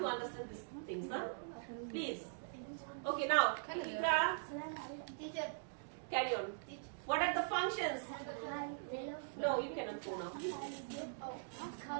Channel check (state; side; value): silent; left; digital silence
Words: understand these things, huh? Please. Okay, now, Ikra, carry on. What are the functions? No, you cannot go now.